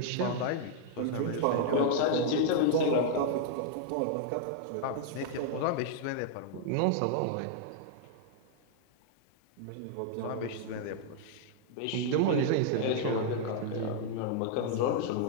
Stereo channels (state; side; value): different; both; correlation -0.01